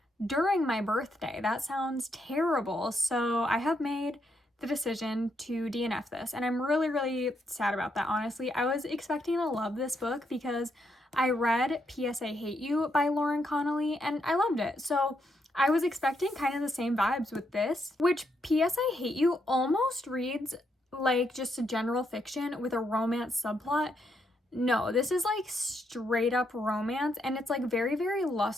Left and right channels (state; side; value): normal; both; correlation 0.78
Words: during my birthday. That sounds terrible. So I have made the decision to DNF this, and I'm really sad about that, honestly. I was expecting to love this book because I read P.S. I Hate You by Lauren Connolly and I loved it. So I was expecting kind of the same vibes with this, which P.S. I Hate You almost reads like just a general fiction with a romance subplot. No, this is like straight up romance, and it's like very